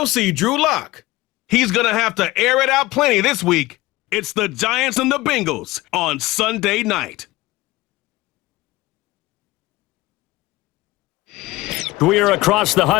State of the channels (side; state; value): right; quieter; 19.5 dB